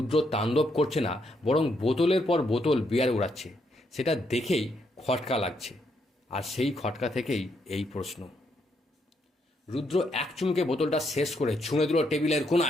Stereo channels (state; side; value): normal; both; correlation 0.76